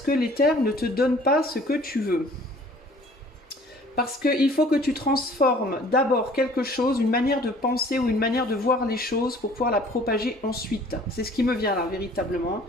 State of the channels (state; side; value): normal; both; correlation 0.53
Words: que l'éther ne te donne pas ce que tu veux? Parce qu'il faut que tu transformes d'abord quelque chose, une manière de penser ou une manière de voir les choses pour pouvoir la propager ensuite. C'est ce qui me vient là, véritablement.